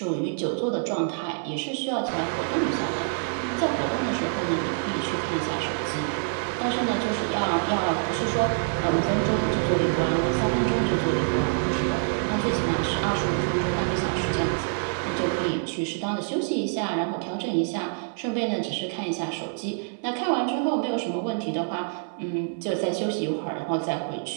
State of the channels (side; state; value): left; silent; 61 dB below the other